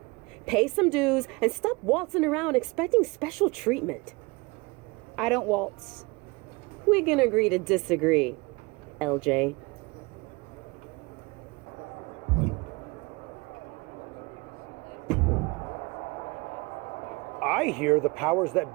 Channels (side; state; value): left; quieter; 25.7 dB